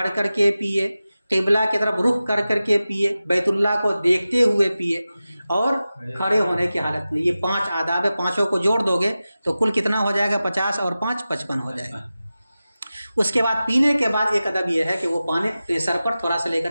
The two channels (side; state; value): both; inverted; correlation -0.95